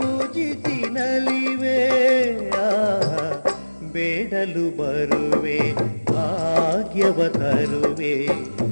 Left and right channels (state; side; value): inverted; both; correlation -1.00